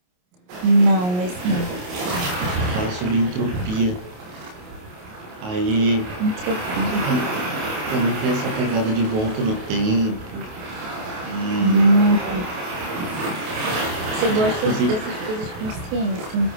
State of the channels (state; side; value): late; left; 28 ms